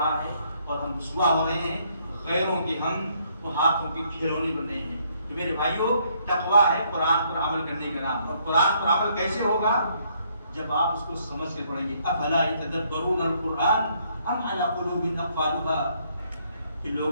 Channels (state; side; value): inverted; both; correlation -0.69